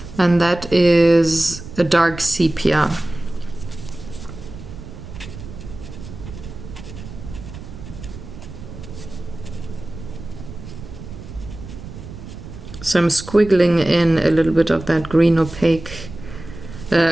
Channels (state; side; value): noise; right; rumble, 13 dB below the sound